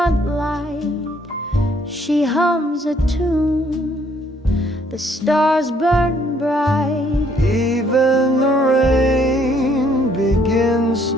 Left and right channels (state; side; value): normal; both; correlation 0.65